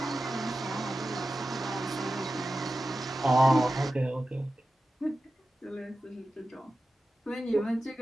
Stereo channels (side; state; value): both; normal; correlation 0.93